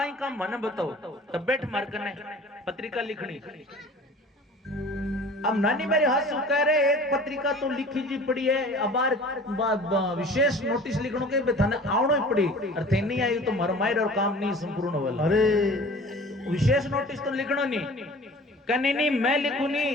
काम मने बताओ तब बैठ मार कने पत्रिका लिखनी। अब नानी मेरे हंसू कह रहे एक पत्रिका तो लिखी जी पड़ी है अब विशेष नोटिस लिखनो के थाने आवणो ही पड़ी और थे नहीं आई तो मरमायर और काम नहीं संपूर्ण वाला। अरे विशेष नोटिस तो लिखनो नहीं कने नहीं मैं लिखू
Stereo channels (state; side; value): normal; both; correlation 0.44